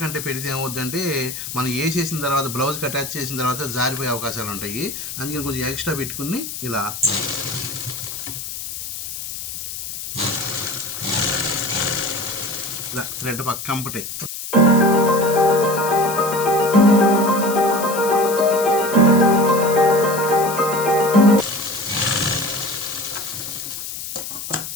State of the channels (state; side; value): noise; left; hiss, 8 dB below the sound